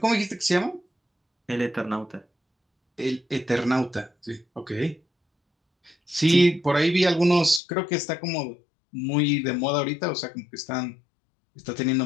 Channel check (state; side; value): drops out; right; at 7.6 s